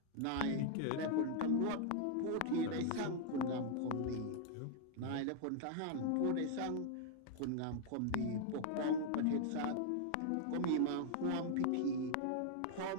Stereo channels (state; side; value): different; both; correlation 0.00